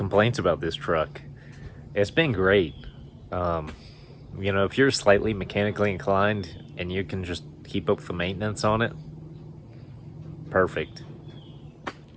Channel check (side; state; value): both; identical; correlation 1.00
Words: about this truck. It's been great. You know, if you're slightly mechanically inclined and you can just keep up with the maintenance on it, perfect.